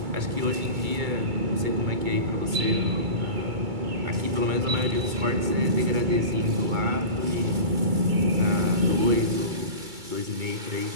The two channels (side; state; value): left; late; 2.3 ms